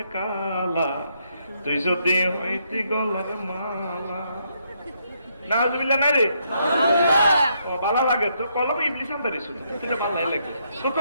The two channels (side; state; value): both; inverted; correlation -0.76